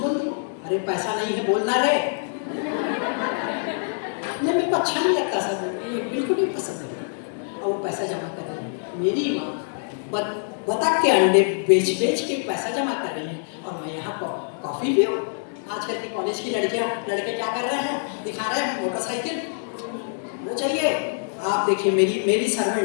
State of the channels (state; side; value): silent; right; digital silence